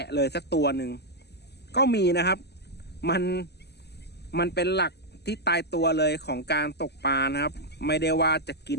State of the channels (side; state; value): right; late; 0.49 ms